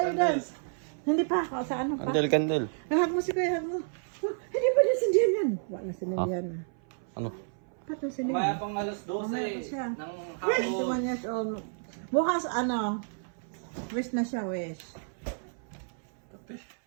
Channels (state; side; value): silent; left; 57 dB below the other